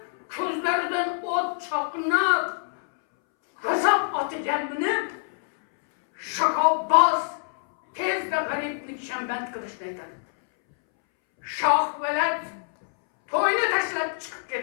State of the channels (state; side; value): silent; right; 61 dB below the other